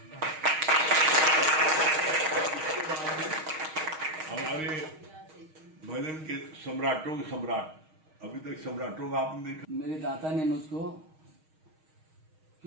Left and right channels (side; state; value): left; late; 6.4 ms